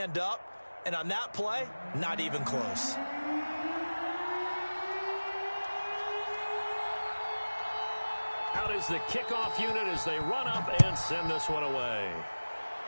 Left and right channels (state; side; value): inverted; both; correlation -1.00